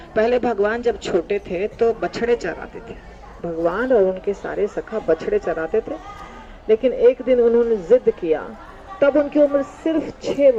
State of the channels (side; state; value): both; identical; correlation 1.00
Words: पहले भगवान जब छोटे थे तो बछड़े चराते थे। भगवान और उनके सारे सखा बछड़े चराते थे। लेकिन एक दिन उन्होंने जिद किया, तब उनकी उम्र सिर्फ 6